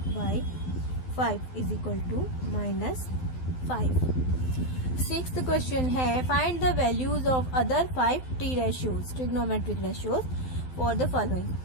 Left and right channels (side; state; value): right; late; 12 ms